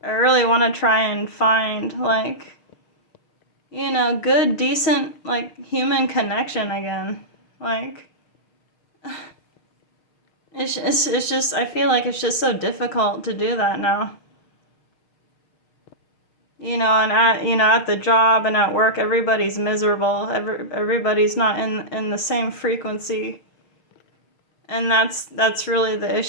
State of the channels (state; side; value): late; right; 6.5 ms